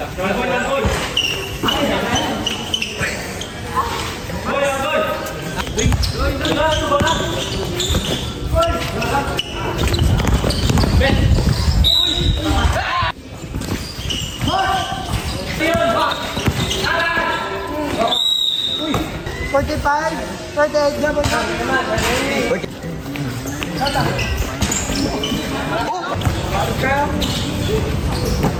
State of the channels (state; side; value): identical; both; correlation 1.00